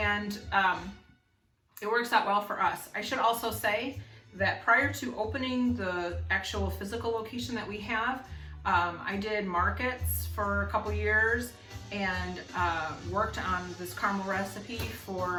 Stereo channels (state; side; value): identical; both; correlation 1.00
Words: it works out well for us. I should also say that prior to opening the actual physical location that we have, I did markets for a couple years and worked on this caramel recipe